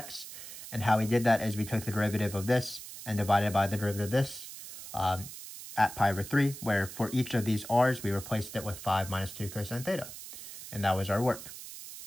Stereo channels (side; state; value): right; noise; hiss, 12 dB below the sound